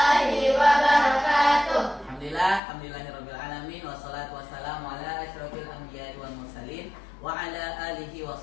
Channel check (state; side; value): drops out; right; at 2.6 s